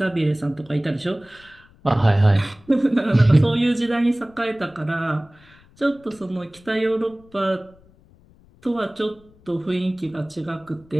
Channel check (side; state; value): left; noise; rumble, 28 dB below the sound